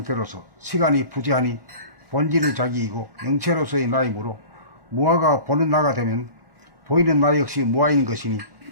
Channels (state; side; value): late; left; 1.3 ms